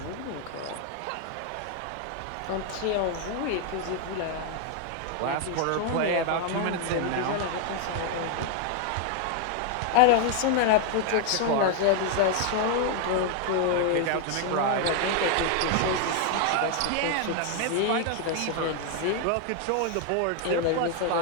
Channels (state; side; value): different; both; correlation 0.00